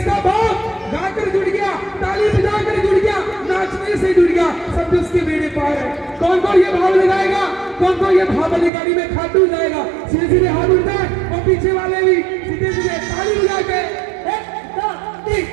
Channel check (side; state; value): left; drops out; at 8.7 s